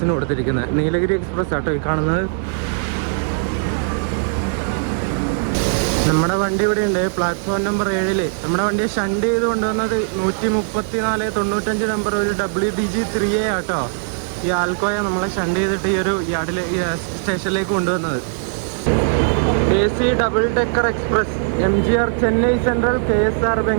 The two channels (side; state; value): left; silent; digital silence